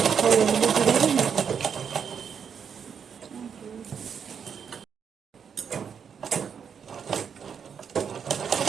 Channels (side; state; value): left; quieter; 7.1 dB